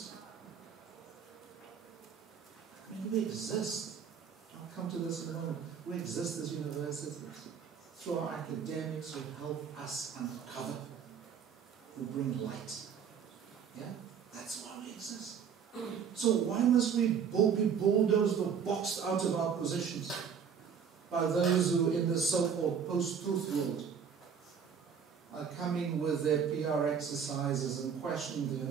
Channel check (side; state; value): left; quieter; 7.2 dB